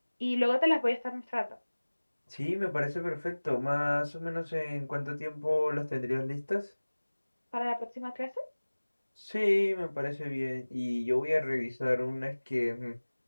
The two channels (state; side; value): inverted; both; correlation -1.00